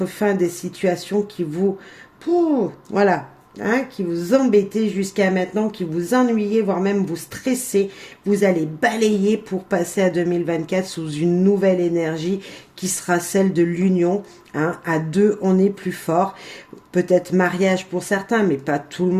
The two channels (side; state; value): both; identical; correlation 1.00